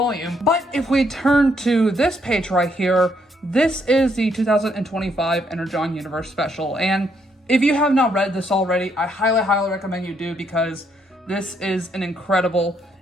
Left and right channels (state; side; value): normal; both; correlation 0.73